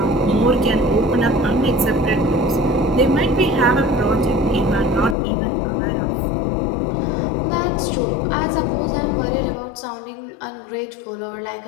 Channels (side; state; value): right; drops out; at 5.2 s